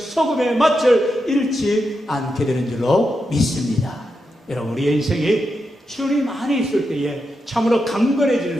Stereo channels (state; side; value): normal; both; correlation 0.86